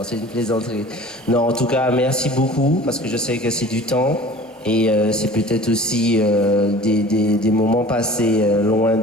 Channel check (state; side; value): normal; both; correlation 0.44